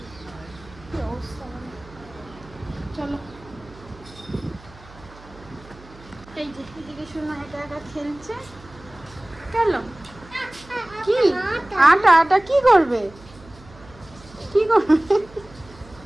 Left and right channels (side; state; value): right; noise; hum, 21 dB below the sound